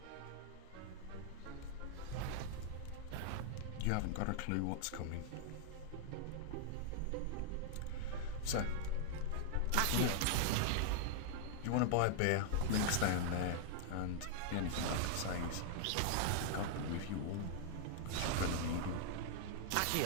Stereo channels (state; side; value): different; both; correlation -0.01